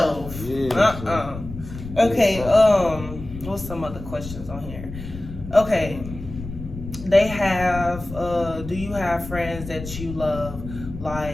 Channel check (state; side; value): noise; left; rumble, 11 dB below the sound